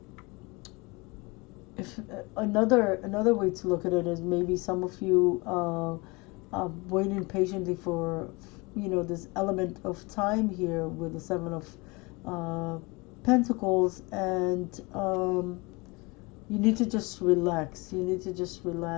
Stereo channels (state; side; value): quieter; right; 26.1 dB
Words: if another way to look at it is maybe some of you waiting patiently for, you know, this element of time here with the 7 of Pentacles, and you need to just relax. You need to just